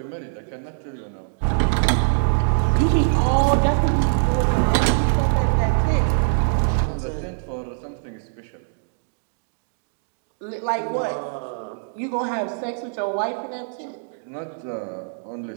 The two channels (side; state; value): left; silent; digital silence